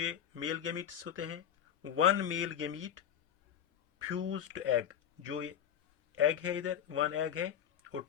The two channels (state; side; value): quieter; right; 9.5 dB